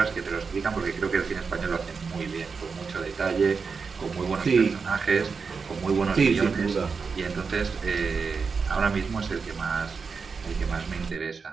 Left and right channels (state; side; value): quieter; left; 5.2 dB